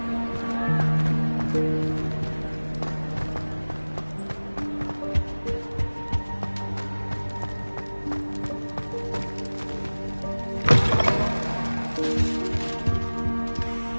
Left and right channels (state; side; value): inverted; both; correlation -1.00